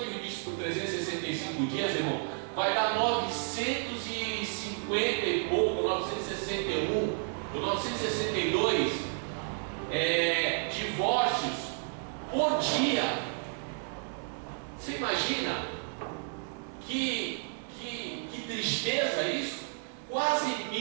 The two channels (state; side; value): silent; left; 57 dB below the other